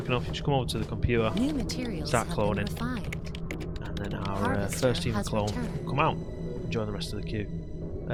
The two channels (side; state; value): both; identical; correlation 1.00